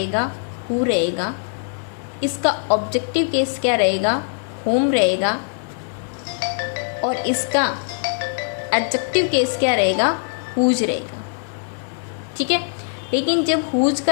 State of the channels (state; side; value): silent; right; digital silence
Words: हु रहेगा। इसका ऑब्जेक्टिव केस क्या रहेगा, होम रहेगा। और इसका एडजेक्टिव केस क्या रहेगा, हुज रहेगा। ठीक है। लेकिन जब हुज